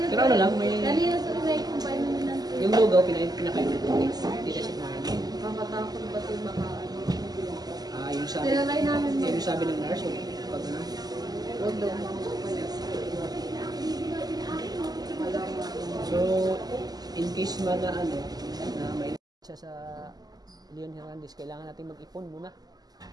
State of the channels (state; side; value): late; left; 0.19 ms